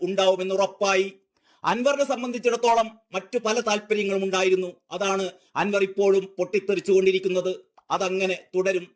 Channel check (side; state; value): both; identical; correlation 1.00